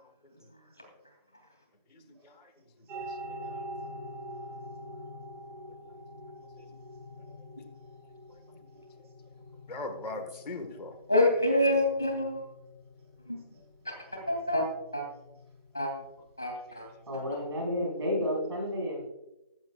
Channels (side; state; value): both; inverted; correlation -0.53